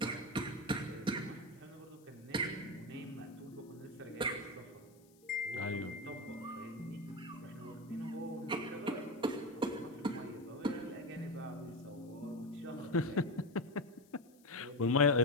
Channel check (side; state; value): left; noise; hiss, 29 dB below the sound